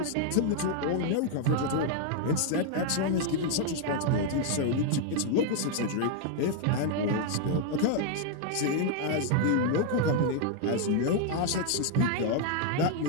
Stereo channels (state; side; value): different; both; correlation 0.00